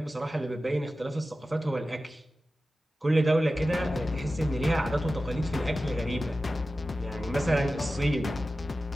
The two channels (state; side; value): normal; both; correlation 0.94